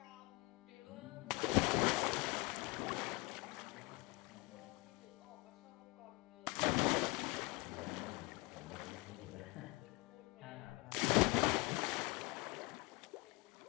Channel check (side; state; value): right; quieter; 24.5 dB